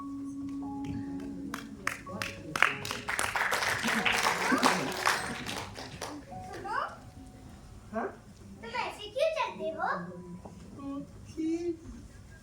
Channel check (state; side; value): identical; both; correlation 1.00